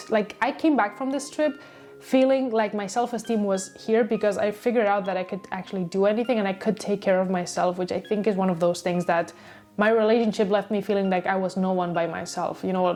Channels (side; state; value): both; identical; correlation 1.00